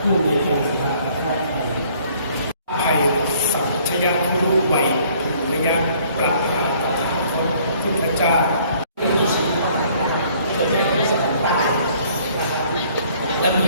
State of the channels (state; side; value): inverted; both; correlation -0.60